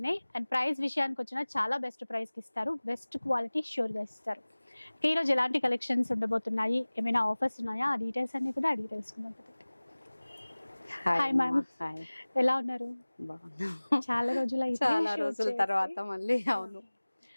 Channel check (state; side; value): inverted; both; correlation -1.00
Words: అండ్ ప్రైస్ విషయానికి వచ్చినా చాలా బెస్ట్ ప్రైస్కి ఇస్తారు, బెస్ట్ క్వాలిటీ ష్యూర్గా ఇస్తారు. ఈరోజు ఎలాంటి కలెక్షన్స్ ఉండబోతున్నాయి, ఏమైనా ఆఫర్స్ ఉన్నాయా, ఆ డీటెయిల్స్ అన్ని కూడా అడిగి తెలుసుకుందాం. హాయ్ మ్యామ్, ఎలా ఉన్నారు? చాలా రోజుల తర్వాత మళ్ళీ. అవును,